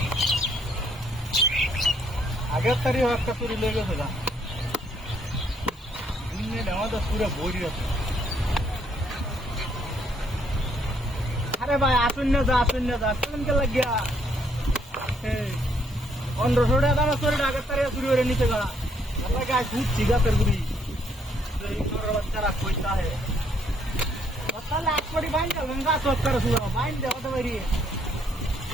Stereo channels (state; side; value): normal; both; correlation 0.70